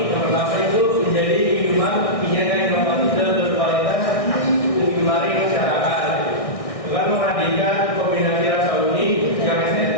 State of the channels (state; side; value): late; right; 1.6 ms